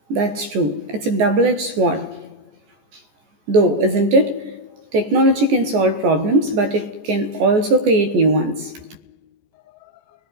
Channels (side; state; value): left; late; 14 ms